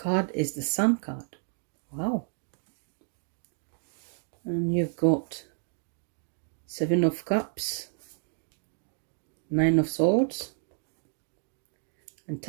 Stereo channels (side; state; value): left; silent; digital silence